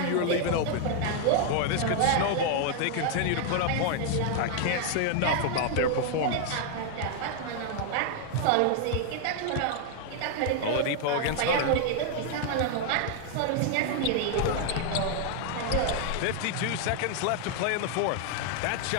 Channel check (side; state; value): both; different; correlation 0.00